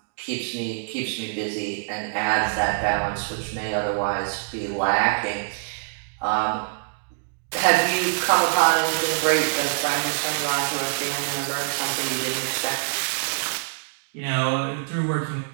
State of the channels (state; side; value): silent; left; digital silence